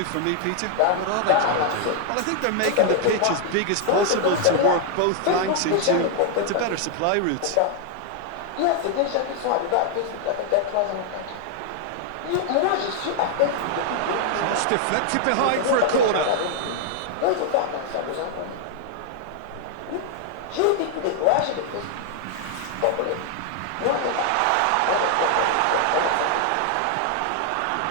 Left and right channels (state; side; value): different; both; correlation 0.00